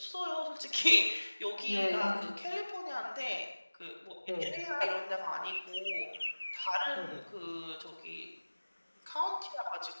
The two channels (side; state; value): both; inverted; correlation -1.00